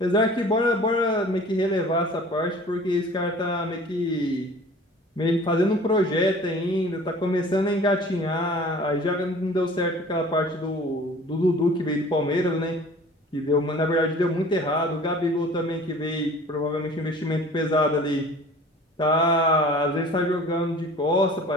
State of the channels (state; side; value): normal; both; correlation 0.46